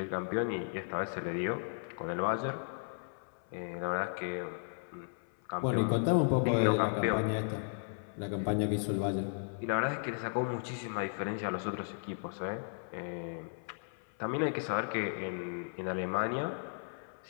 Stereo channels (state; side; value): silent; right; 54 dB below the other